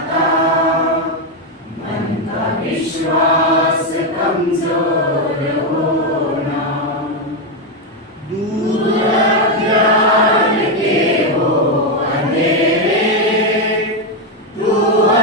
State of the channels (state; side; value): normal; both; correlation 0.05